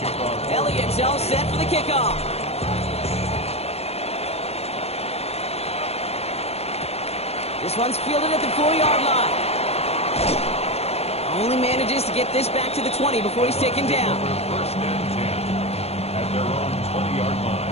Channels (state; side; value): late; right; 0.30 ms